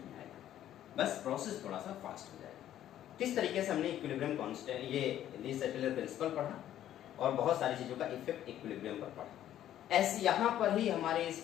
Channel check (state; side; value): quieter; right; 11.8 dB